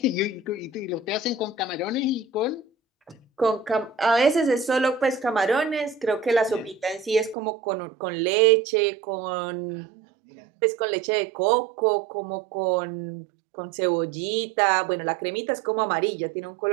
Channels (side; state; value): left; drops out; at 7.4 s